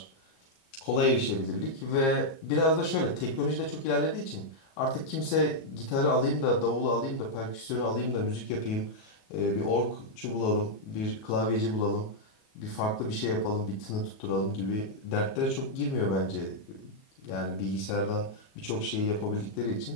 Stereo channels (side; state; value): right; late; 37 ms